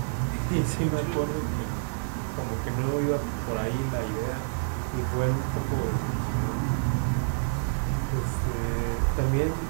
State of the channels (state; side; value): silent; left; digital silence